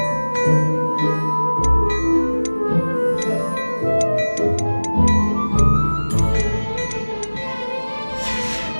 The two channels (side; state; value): both; inverted; correlation -1.00